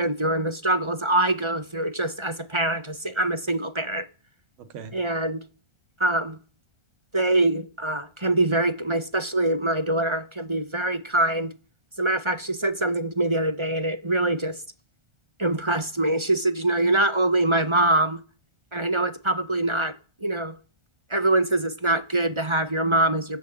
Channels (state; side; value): late; left; 1.4 ms